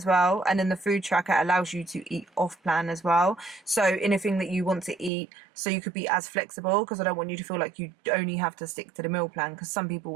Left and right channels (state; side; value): drops out; left; at 5.1 s